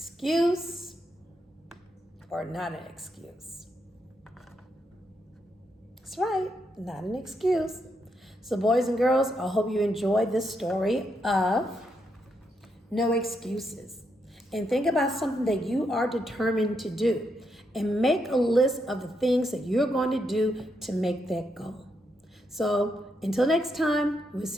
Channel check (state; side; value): normal; both; correlation 0.80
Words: or not an excuse? That's right, not an excuse. So boys and girls, I hope you enjoyed this story of no excuses. And think about something that you are determined to do. And make a list of the things that you're going to do to make that goal. So until next time, we'll